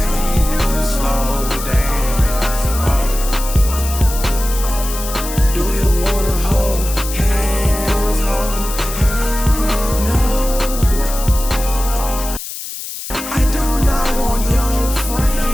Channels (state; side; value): noise; left; hiss, 9 dB below the sound